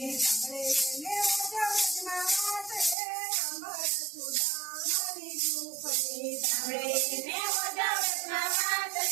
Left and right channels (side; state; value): left; drops out; at 3.0 s